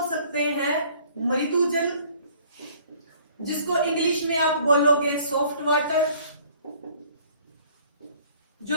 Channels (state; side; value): inverted; both; correlation -0.55